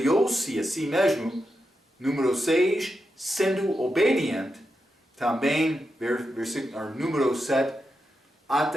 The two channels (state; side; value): normal; both; correlation 0.87